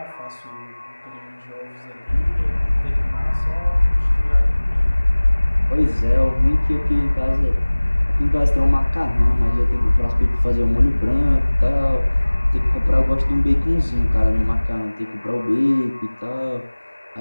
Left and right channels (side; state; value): both; inverted; correlation -1.00